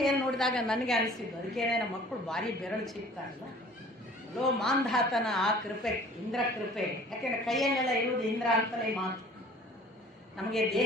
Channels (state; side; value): normal; both; correlation 0.49